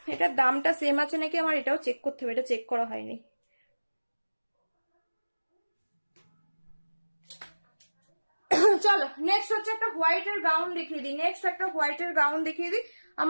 এটার দামটা সেম আছে নাকি আমার এটাও চেক করতে হবে, এটা চেক করা হয়নি। চলো নেক্সট হচ্ছে একটা হোয়াইটের গাউন দেখিয়ে দিই, নেক্সট একটা হোয়াইটের গাউন দেখিয়ে দিই।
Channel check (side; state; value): both; inverted; correlation -1.00